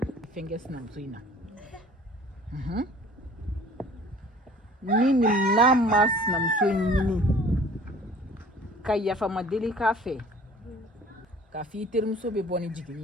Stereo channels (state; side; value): normal; both; correlation 0.49